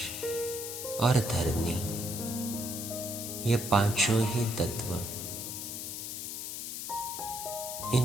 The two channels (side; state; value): left; noise; hiss, 5 dB below the sound